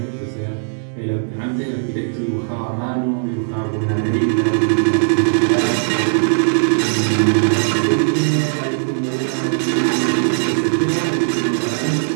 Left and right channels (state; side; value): silent; left; digital silence